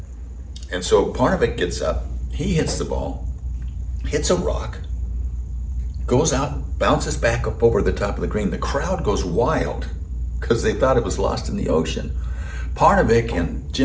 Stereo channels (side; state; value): both; identical; correlation 1.00